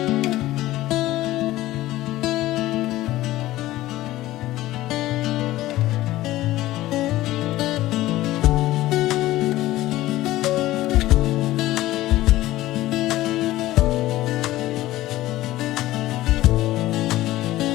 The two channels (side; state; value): right; quieter; 16.2 dB